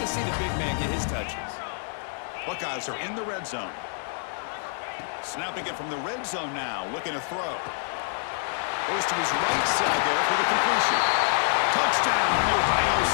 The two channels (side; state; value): right; silent; digital silence